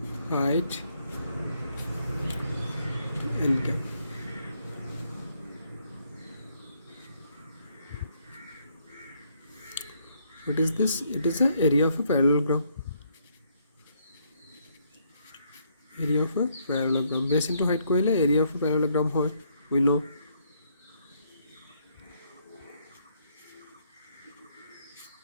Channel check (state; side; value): inverted; both; correlation -0.71